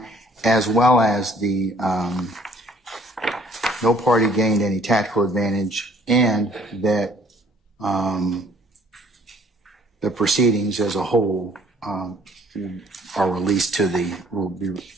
as well as the no party gained any tactical advantage, and that the proceedings as a whole are released to will be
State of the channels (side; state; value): both; normal; correlation 0.59